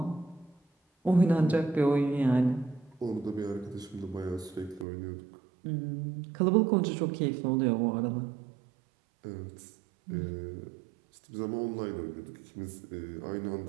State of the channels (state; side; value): drops out; left; at 4.9 s